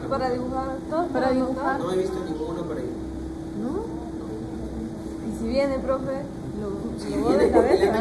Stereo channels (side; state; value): both; identical; correlation 1.00